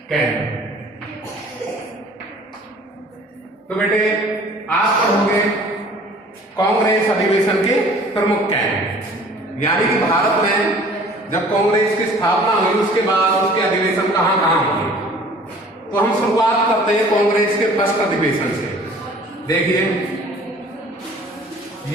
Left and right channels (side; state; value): both; normal; correlation 0.50